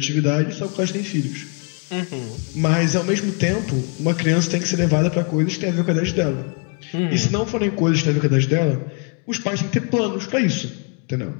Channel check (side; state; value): right; quieter; 36.8 dB